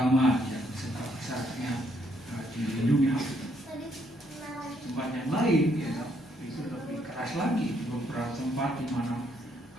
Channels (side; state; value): both; normal; correlation 0.71